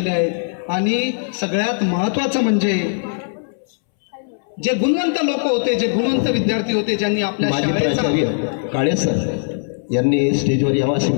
आहेत. आणि सगळ्यात महत्त्वाचं म्हणजे जे गुणवंत लोक होते, जे गुणवंत विद्यार्थी होते, ज्यांनी आपल्या शाळेचा काळे सर यांनी स्टेजवर यावं अशी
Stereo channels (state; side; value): silent; right; 66 dB below the other